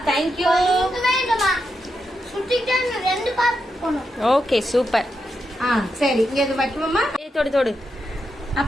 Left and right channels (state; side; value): normal; both; correlation 0.85